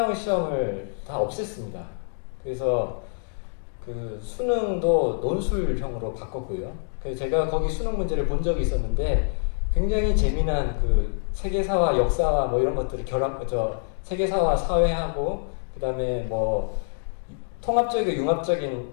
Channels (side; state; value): right; silent; digital silence